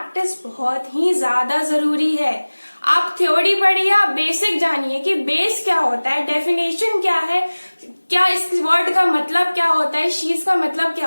बहुत ही ज्यादा जरूरी है। आप थ्योरी पढ़िए, आप बेसिक जानिए कि बेस क्या होता है, डेफिनेशन क्या है, क्या इस वर्ड का मतलब क्या होता है, चीज का मतलब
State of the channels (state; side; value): inverted; both; correlation -1.00